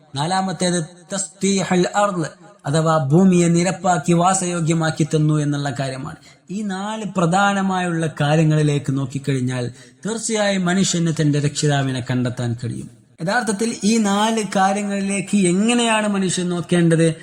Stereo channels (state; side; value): identical; both; correlation 1.00